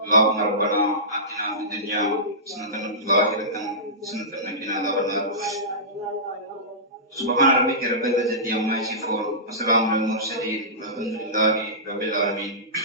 اللهم ربنا آتنا في الدنيا حسنة وفي الآخرة حسنة وقنا عذاب النار. سبحان ربك رب العزة عما يصفون وسلام على المرسلين والحمد لله رب العالمين.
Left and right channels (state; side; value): normal; both; correlation -0.20